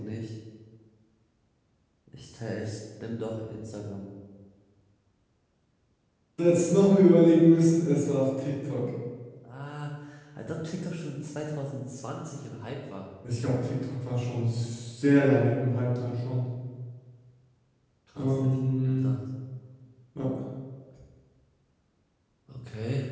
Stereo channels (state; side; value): identical; both; correlation 1.00